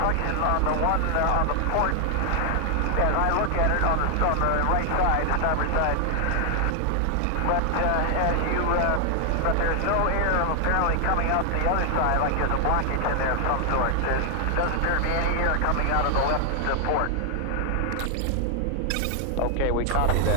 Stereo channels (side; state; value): both; different; correlation 0.00